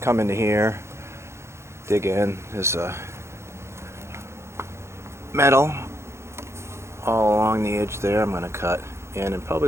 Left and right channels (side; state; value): left; late; 0.13 ms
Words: into here, dig in. There's metal all along the edge there. I'm going to cut in and probably